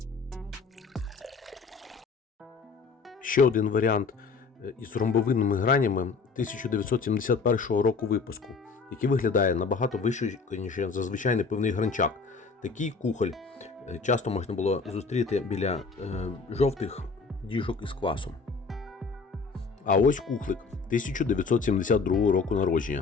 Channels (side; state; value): right; quieter; 4.7 dB